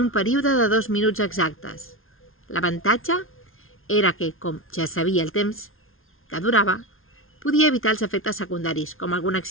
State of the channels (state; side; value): late; right; 0.61 ms